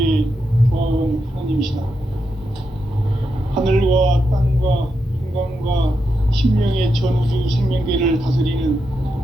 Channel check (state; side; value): normal; both; correlation 0.85